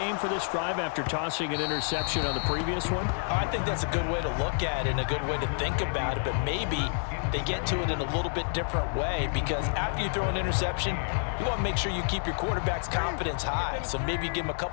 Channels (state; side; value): silent; right; 59 dB below the other